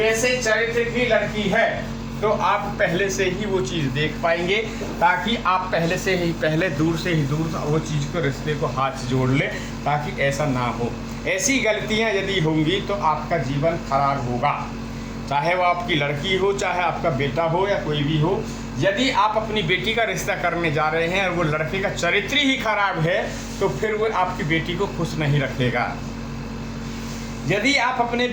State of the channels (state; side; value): identical; both; correlation 1.00